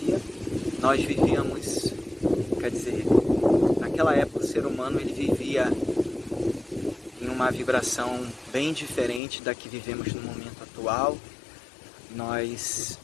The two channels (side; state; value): right; drops out; at 9.2 s